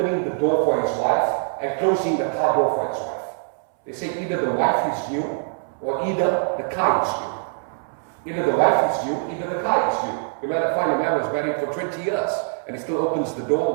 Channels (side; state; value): left; silent; 63 dB below the other